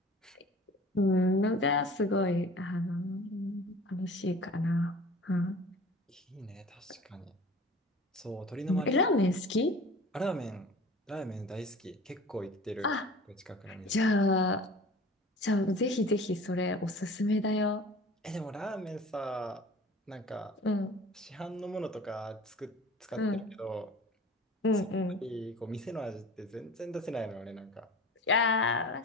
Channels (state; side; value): normal; both; correlation 0.42